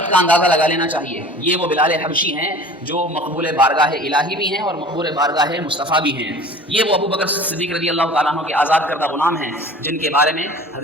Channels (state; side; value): normal; both; correlation 0.43